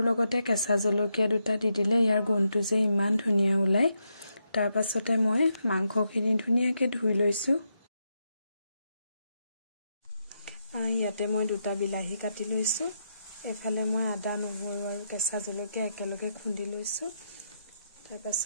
লগতে কেঁচা জলকীয়া 2টা দি দিলে ইয়াৰ গোন্ধটো যে ইমান ধুনীয়া ওলায়। তাৰ পাছতে মই মাংসখিনি ধুনীয়াকৈ ধুই লৈছোঁ। ইয়াতে মই 2টা বিলাহী কাটি লৈছোঁ। এফালে মই আদা নহৰু আৰু কেঁচা জলকীয়া একেলগে খুন্দি লৈছোঁ। তাৰ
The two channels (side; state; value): both; inverted; correlation -0.83